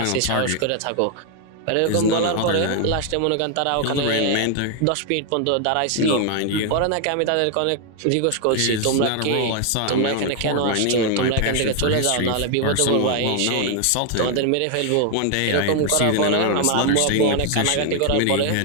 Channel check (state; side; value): different; both; correlation 0.00